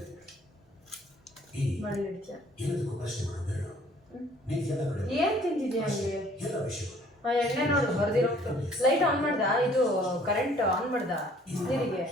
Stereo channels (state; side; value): normal; both; correlation 0.57